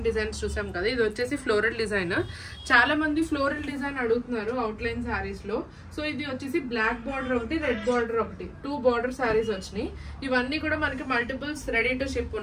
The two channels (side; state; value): both; identical; correlation 1.00